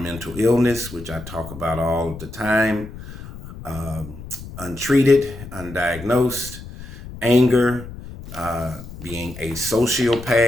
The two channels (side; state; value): left; noise; rumble, 13 dB below the sound